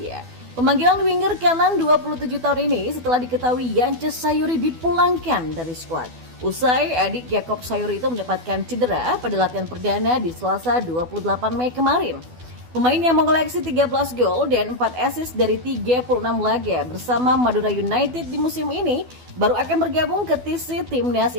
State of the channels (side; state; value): left; late; 12 ms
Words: Pemanggilan winger kanan 27 tahun ini setelah diketahui Yance Sayuri dipulangkan dari skuad. Usai adik Yakob Sayuri itu mendapatkan cedera pada latihan perdana di Selasa 28 Mei kemarin. Pemain yang mengoleksi 13 gol dan 4 assist dari 36 laga bersama Madura United di musim ini baru akan bergabung ke TC Timnas